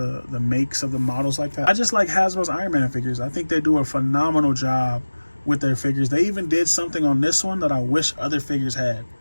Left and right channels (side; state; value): both; inverted; correlation -1.00